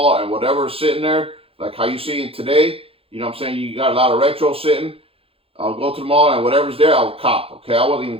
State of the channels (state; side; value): late; left; 0.27 ms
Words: and whatever's sitting there, like how you see it today, you know what I'm saying? You got a lot of retro sitting. I'll go to the mall, and whatever's there, I'll cop. Okay, I wasn't